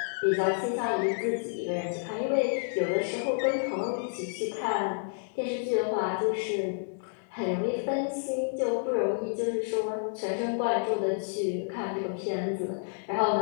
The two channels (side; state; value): right; silent; digital silence